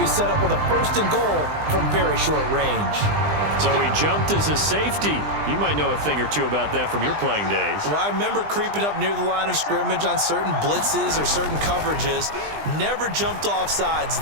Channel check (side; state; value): left; late; 20 ms